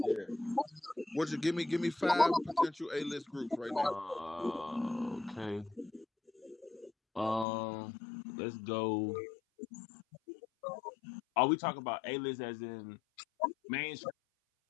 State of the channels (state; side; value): drops out; right; at 7.5 s